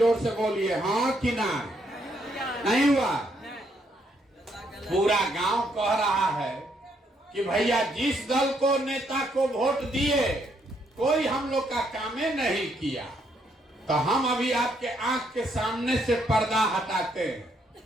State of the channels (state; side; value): normal; both; correlation 0.73